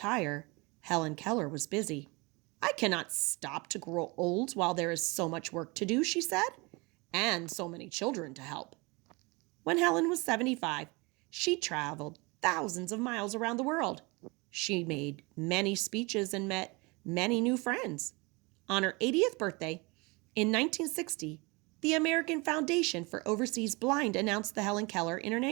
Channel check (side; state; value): left; quieter; 26.5 dB